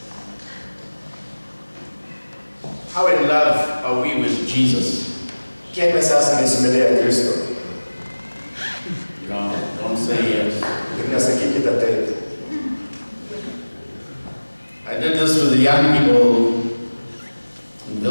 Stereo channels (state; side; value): inverted; both; correlation -1.00